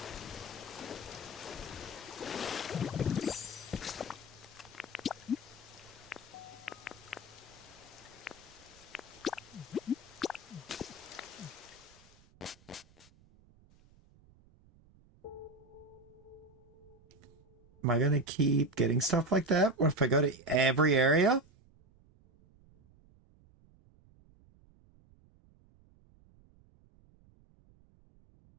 Am I gonna keep getting stuff like that? What if I go to every area?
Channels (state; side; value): noise; right; rumble, 27 dB below the sound